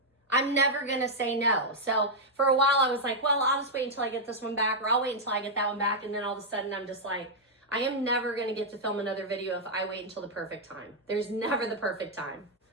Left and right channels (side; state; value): both; normal; correlation -0.04